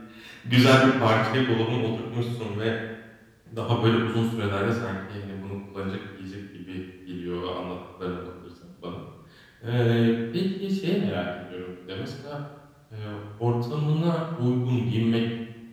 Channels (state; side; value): identical; both; correlation 1.00